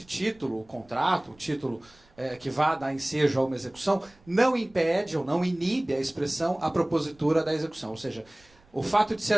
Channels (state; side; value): noise; right; rumble, 29 dB below the sound